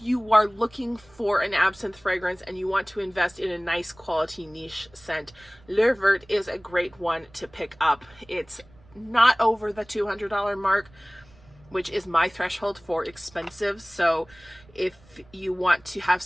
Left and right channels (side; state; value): right; noise; rumble, 27 dB below the sound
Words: you are looking for an absinthe fragrance and you want to invest in a nice quality niche scent, Le Vert is a great one to pick up. It's not over the $200 mark, which is my threshold for expensive. So if you want to have